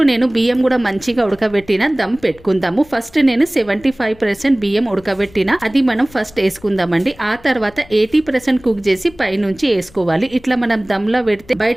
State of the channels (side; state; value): left; noise; rumble, 24 dB below the sound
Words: నేను బియ్యం కూడా మంచిగా ఉడకబెట్టిన దమ్ పెట్టుకుందాము. ఫస్ట్ నేను 75% బియ్యం ఉడకబెట్టిన అది మనం ఫస్ట్ వేసుకుందామండి. ఆ తర్వాత 80% కుక్ చేసి పైనుంచి వేసుకోవాలి. ఇట్లా మనం దమ్ లో పెడితే